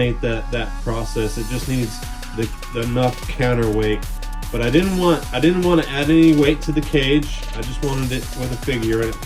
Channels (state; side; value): identical; both; correlation 1.00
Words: that process. It just needs enough counterweight. But I didn't want to add any weight to the cage. I just wanted it with a figure in it